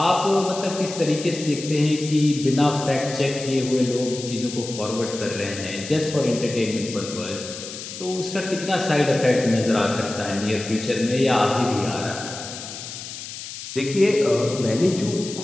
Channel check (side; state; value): left; noise; hiss, 10 dB below the sound